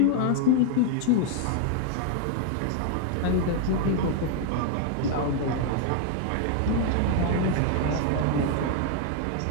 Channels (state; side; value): different; both; correlation 0.00